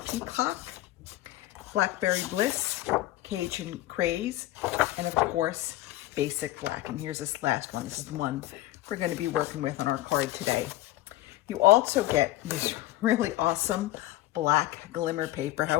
Peacock, Blackberry Bliss, Cajun Craze, and of course, Basic Black. And here's this last one. This is the one we're going to be working with on our card today. You also get this really awesome black glimmer paper.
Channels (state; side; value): quieter; right; 16.0 dB